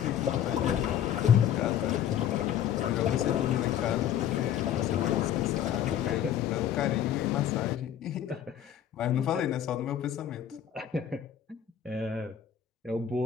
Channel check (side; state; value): right; quieter; 9.8 dB